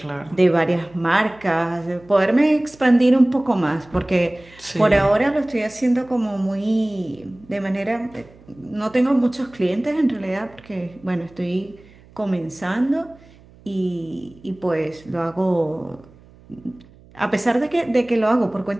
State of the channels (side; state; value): right; noise; hum, 25 dB below the sound